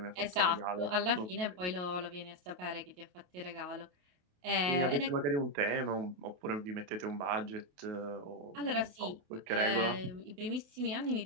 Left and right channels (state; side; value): late; left; 28 ms